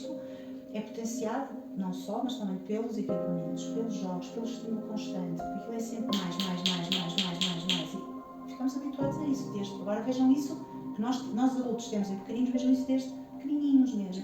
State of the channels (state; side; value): identical; both; correlation 1.00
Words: é potenciado, não só, mas também pelos equipamentos, pelos jogos, pelo estímulo constante, porque aquilo é sempre mais, e ficamos habituados a isso. Agora vejam isso, que nós adultos temos em pequeninos, vejam isso desde pequenininhos